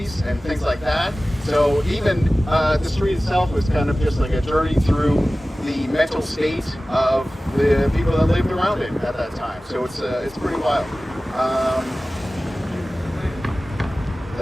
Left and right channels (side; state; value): both; normal; correlation 0.97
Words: and things like that. So even the street itself was kind of just like a journey through the mental state of the people that lived around it at that time. So it's pretty wild.